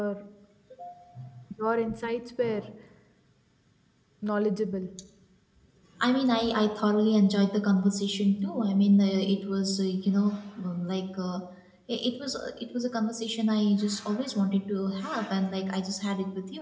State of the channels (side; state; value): both; identical; correlation 1.00